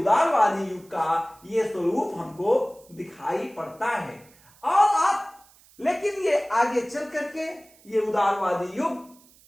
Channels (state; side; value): noise; right; hiss, 28 dB below the sound